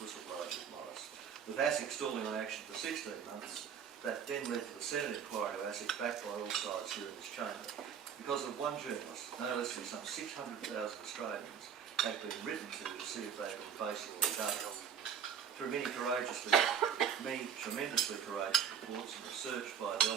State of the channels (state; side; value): quieter; left; 7.8 dB